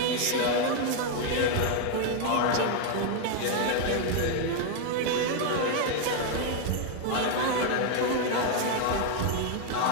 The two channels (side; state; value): both; different; correlation 0.01